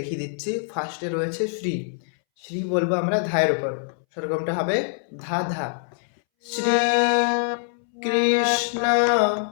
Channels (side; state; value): right; silent; 62 dB below the other